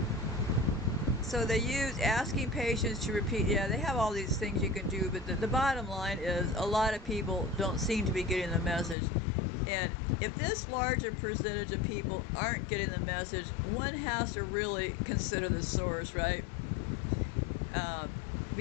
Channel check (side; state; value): right; drops out; at 9.0 s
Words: so they use asking patients to repeat. Yeah, they have all these things you can do, but the bottom line is a lot of people don't seem to be getting the message. And if this larger percentage of people aren't getting the message, one has to really consider the source, right?